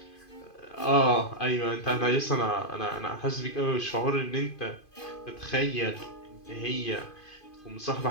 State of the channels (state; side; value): late; right; 2.5 ms